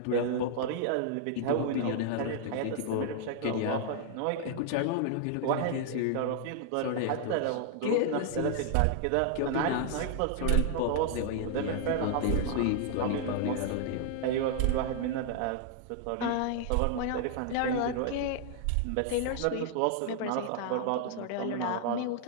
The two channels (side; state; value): both; different; correlation -0.01